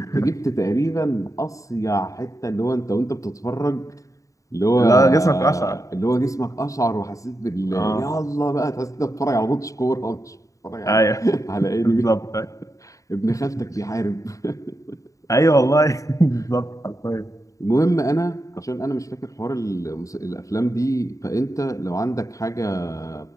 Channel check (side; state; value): right; late; 0.16 ms